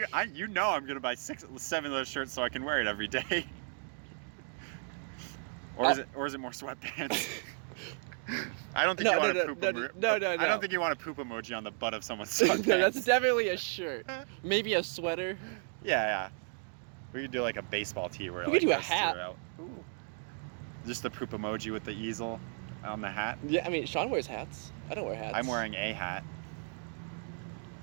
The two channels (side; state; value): left; silent; 55 dB below the other